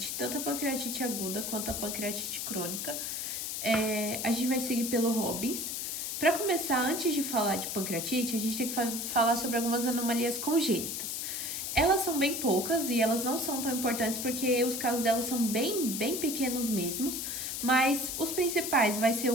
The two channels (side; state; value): left; noise; hiss, 3 dB below the sound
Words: tanto a pancreatite aguda quanto a pancreatite crônica. A gente vai seguir pelo Robbins. Para começar, antes de falar de pancreatite, a gente tem que falar sobre algumas anomalias congênitas. Elas são bem poucas e elas não são tão importantes porque os casos delas são bem pequenos mesmos, mas os principais vai ser